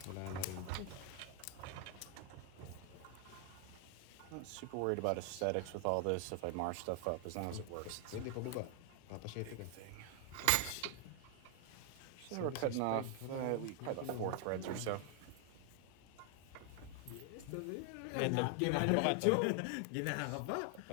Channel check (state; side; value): different; both; correlation 0.00